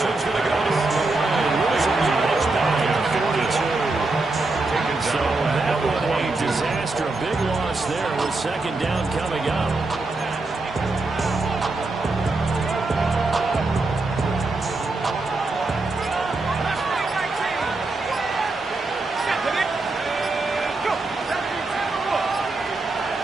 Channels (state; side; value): quieter; left; 3.3 dB